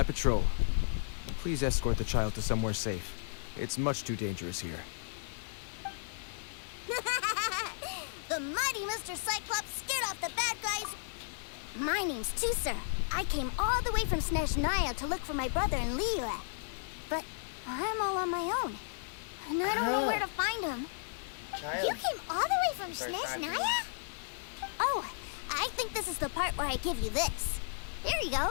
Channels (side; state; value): right; silent; 55 dB below the other